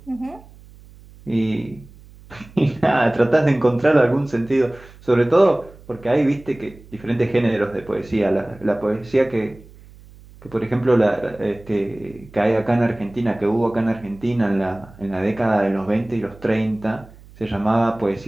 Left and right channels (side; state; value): right; noise; hum, 22 dB below the sound